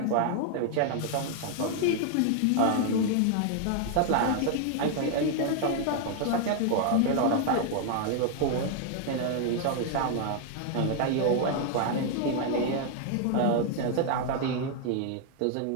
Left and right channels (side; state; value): both; different; correlation 0.00